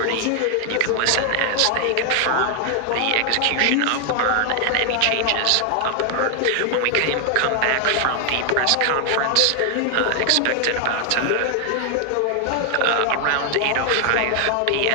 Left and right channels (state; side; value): different; both; correlation 0.00